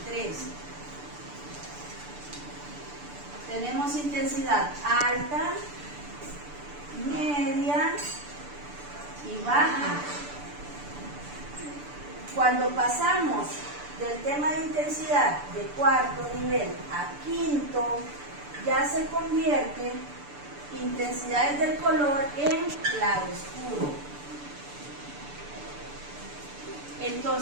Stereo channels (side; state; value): left; late; 6.9 ms